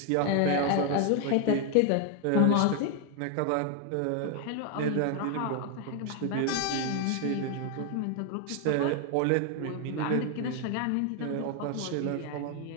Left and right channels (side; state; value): both; different; correlation 0.01